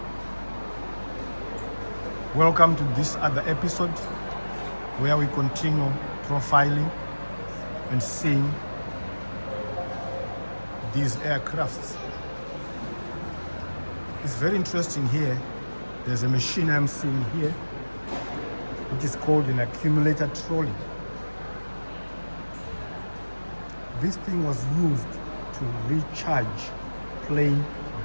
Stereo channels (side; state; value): both; inverted; correlation -1.00